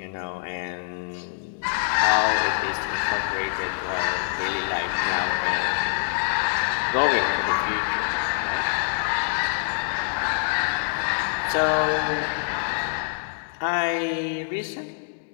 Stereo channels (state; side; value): silent; right; digital silence